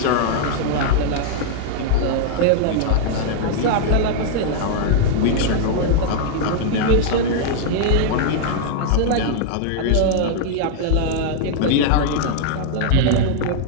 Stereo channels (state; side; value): different; both; correlation -0.01